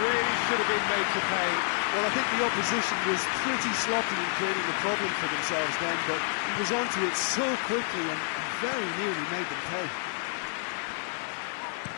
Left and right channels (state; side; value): silent; right; digital silence